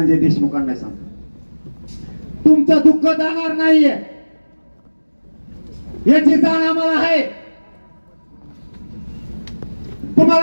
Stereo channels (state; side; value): inverted; both; correlation -1.00